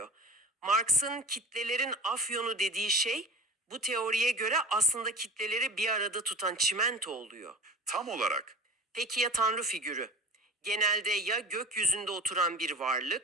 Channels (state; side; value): normal; both; correlation 0.38